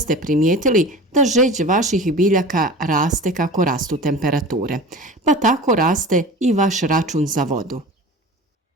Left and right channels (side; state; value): both; normal; correlation 0.35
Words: primijetili da žeđ vaših biljaka raste kako rastu temperature, pa tako raste i vaš račun za vodu.